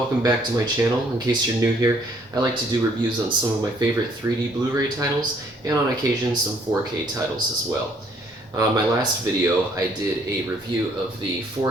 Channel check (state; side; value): normal; both; correlation 0.64